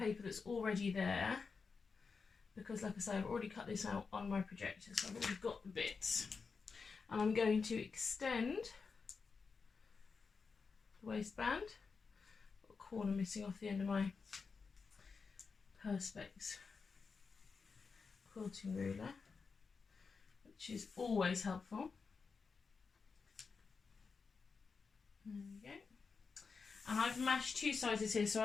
that's already there, because like I say, I've already cut this out on my projector, so I've already got the bits. And I'm going to extend the waistband. Got a corner missing off the end of my Perspex quilting ruler, which is always helpful. There we go. And I've mashed 2 sizes here, so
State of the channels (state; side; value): quieter; right; 5.0 dB